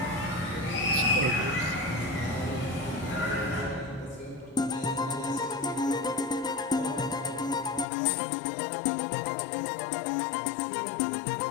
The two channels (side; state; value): right; drops out; at 7.9 s